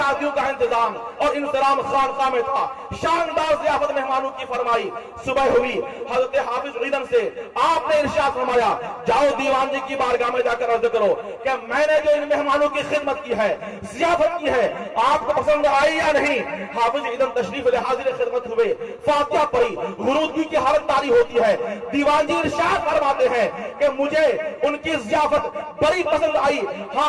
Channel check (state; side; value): identical; both; correlation 1.00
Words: का इंतजाम और इंतजाम खानकाह में था। शानदार ज़ियाफत मेहमानों की फरमाई। सुबह हुई, हजरत हाफिज ईदन से आपने इरशाद फरमाया, जाओ दीवान जी की बारगाह में जाकर अर्ज करो कि मैंने जो इन मेहमानों की खिदमत की है, ज़ियाफत की है, आपको पसंद आई या नहीं। हाफिज ईदन तशरीफ ले हाजिर खिदमत हुए, फातिहा पढ़ी, गुरूदगी की हालत तारी होती है। दीवान जी इरशाद फरमाते हैं कि मुझे उनकी ज़ियाफत बड़ी पसंद आई। हाँ,